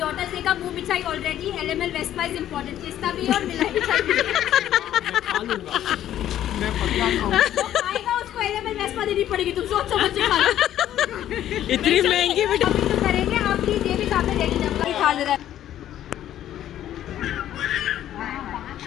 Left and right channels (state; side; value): quieter; right; 11.8 dB